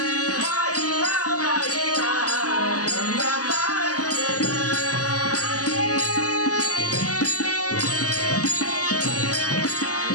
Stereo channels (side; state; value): right; late; 0.67 ms